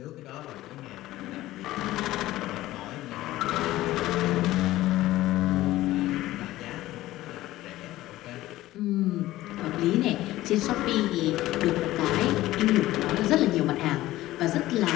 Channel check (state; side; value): quieter; right; 16.1 dB